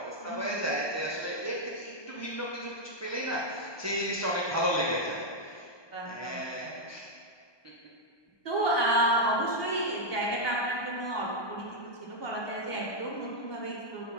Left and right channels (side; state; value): right; late; 1.2 ms